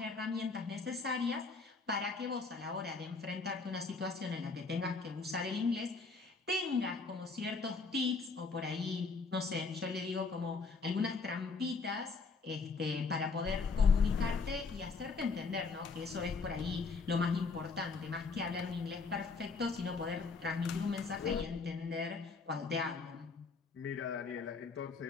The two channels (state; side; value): quieter; right; 4.5 dB